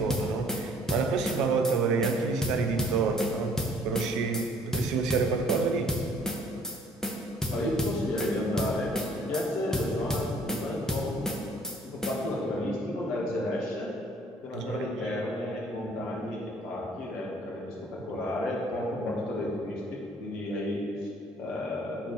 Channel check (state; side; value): normal; both; correlation 0.58